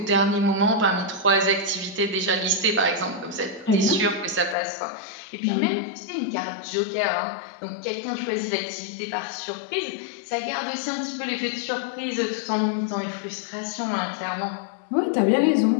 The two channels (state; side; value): drops out; right; at 4.5 s